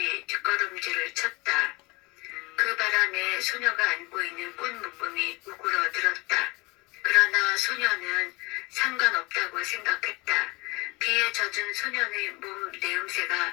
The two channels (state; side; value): quieter; right; 24.7 dB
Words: 뒷걸음질을 쳤다. 그 바람에 소녀가 안고 있는 꽃묶음이 우그러들었다. 그러나 소녀는 상관없다고 생각했다. 비에 젖은 소년의 몸